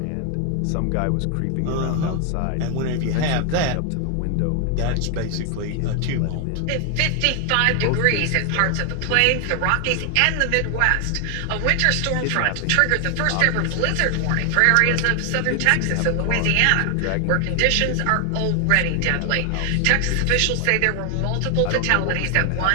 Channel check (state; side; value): different; both; correlation 0.00